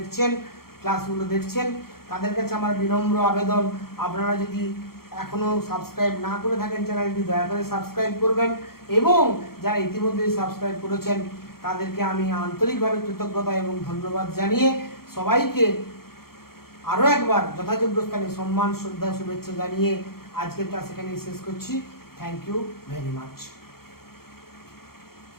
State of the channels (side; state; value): right; late; 0.94 ms